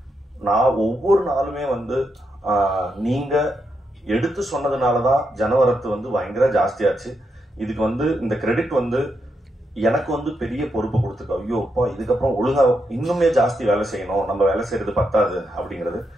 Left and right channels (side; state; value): both; normal; correlation 0.82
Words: நான் ஒவ்வொரு நாளுமே நீங்க எடுத்து சொன்னதுனால தான் ஜனவரத்து பயங்கர ஜாஸ்தியாச்சு. இதுக்கு இந்த கிரெடிட் எனக்கு பெரிய பொறுப்பு கொடுத்துருக்கோம். ஐயோ அப்பா, இதுக்கப்புறம் ஒழுங்கா இன்னுமே ஜாஸ்தி வேலை செய்யணும், நம்ம வேலை செய்யறது பத்தாது அப்படிங்கிறது.